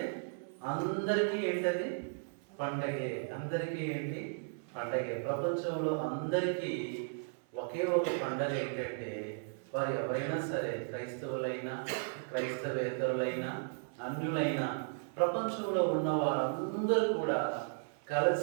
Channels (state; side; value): silent; left; 54 dB below the other